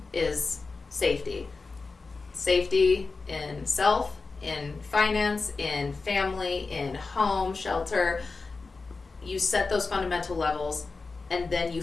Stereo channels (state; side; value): quieter; right; 4.1 dB